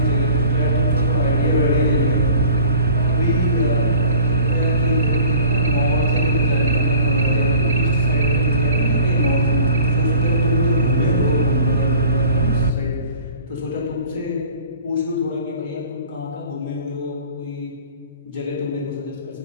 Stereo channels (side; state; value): both; inverted; correlation -0.46